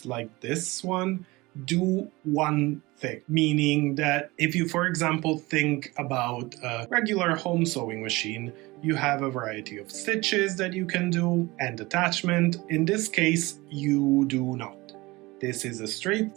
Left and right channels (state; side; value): quieter; left; 21.8 dB